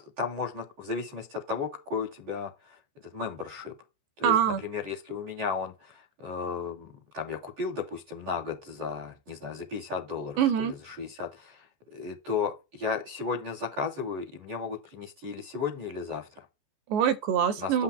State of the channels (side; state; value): left; late; 14 ms